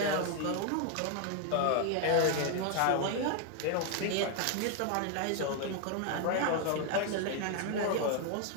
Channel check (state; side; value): different; both; correlation 0.00